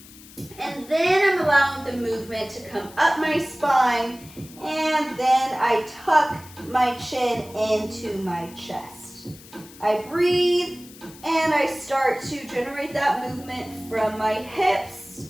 and then I'm allowing the movement to come up my spine, and then I tuck my chin into my chest. I breathe, and I start to generate that movement from my hips,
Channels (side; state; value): left; noise; hiss, 20 dB below the sound